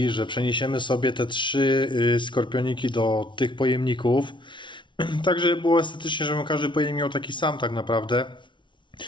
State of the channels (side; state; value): right; late; 0.24 ms